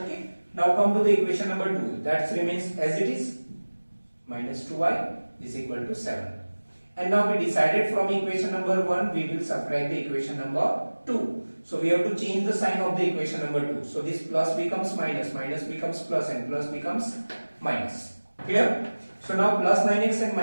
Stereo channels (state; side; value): inverted; both; correlation -1.00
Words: Now come to the equation number 2. That remains as it is. Minus 2y is equal to 7. And now we decided from equation number 1 we will subtract the equation number 2. So we have to change the sign of the equation number 2. So this plus becomes minus, minus becomes plus, and plus becomes minus. Clear? So now plus 9x and